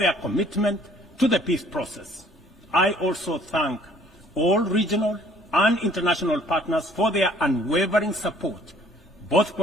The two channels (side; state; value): both; normal; correlation 0.58